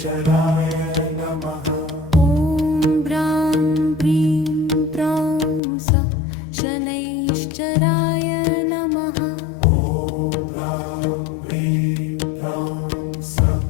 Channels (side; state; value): right; drops out; at 5.6 s